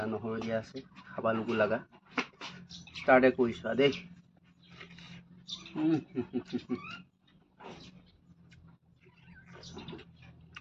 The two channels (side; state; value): both; identical; correlation 1.00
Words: নহৰু দিয়া আছে খাব লগু লগা ষ্টাৰ্টে কৰিছোঁ দেই